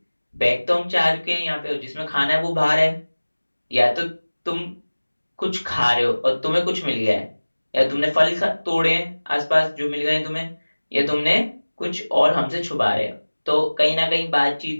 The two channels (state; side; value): inverted; both; correlation -1.00